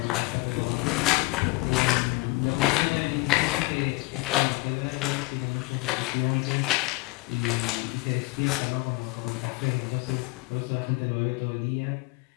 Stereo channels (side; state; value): right; quieter; 23.9 dB